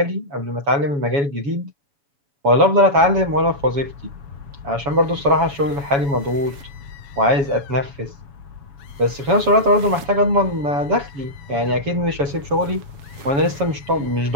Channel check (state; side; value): late; left; 7.1 ms